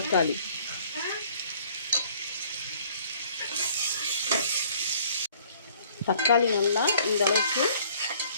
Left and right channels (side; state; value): both; inverted; correlation -0.57